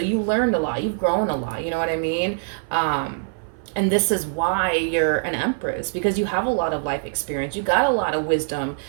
you learned a lot. You've grown a lot. You know what I mean? And this is why you're an Empress, because you have a lot of life experience. You got a lot of wisdom,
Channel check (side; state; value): left; silent; 58 dB below the other